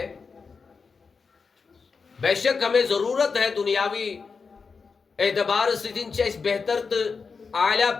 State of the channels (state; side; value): quieter; right; 5.1 dB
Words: بے شک ہمیں ضرورت ہے دنیاوی اعتبار سے دن چاہیے بہتر تو اعلیٰ